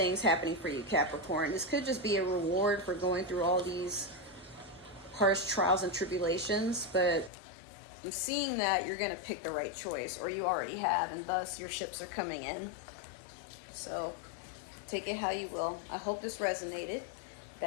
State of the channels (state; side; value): drops out; right; at 7.3 s